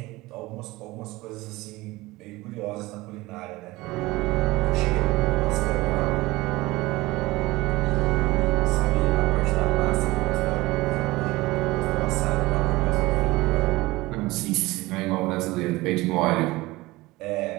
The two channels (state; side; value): quieter; left; 20.2 dB